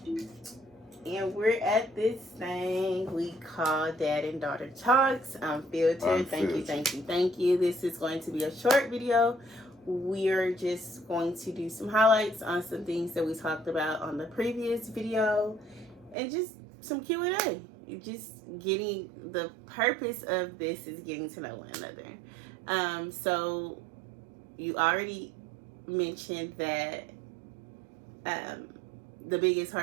And we're at this thing we call Dad and Daughter Talks. Unfiltered. Thank you. This is going to be a short video. We're just going to do some highlights on some things that we talked about on the previous video, and just some Q&A. Just getting, the purpose of this is getting to know one another. So you already mentioned that the biggest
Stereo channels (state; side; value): drops out; left; at 16.2 s